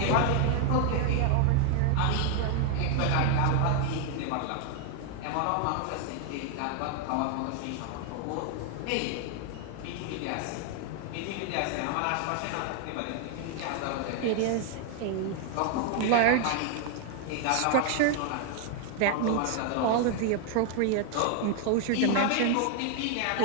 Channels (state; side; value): different; both; correlation 0.00